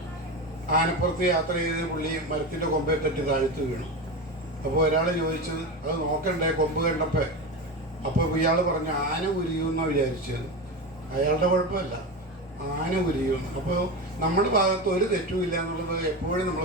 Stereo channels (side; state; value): both; normal; correlation 0.22